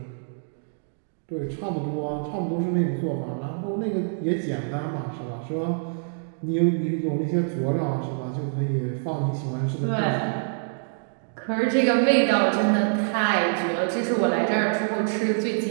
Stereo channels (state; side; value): silent; left; digital silence